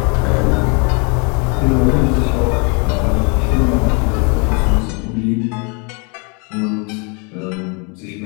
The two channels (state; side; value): quieter; right; 33.5 dB